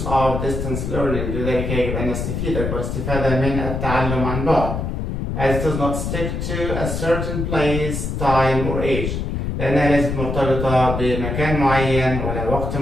of distance learning. لذلك يجب أن نستفيد أكبر استفادة من التعلم عن بعد. As it does not stick to a certain place, time or age. لأنها ليست مرتبطة بمكان معين ولا وقت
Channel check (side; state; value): left; noise; rumble, 3 dB below the sound